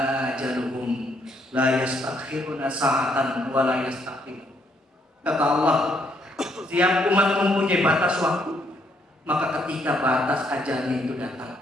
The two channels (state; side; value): normal; both; correlation 0.71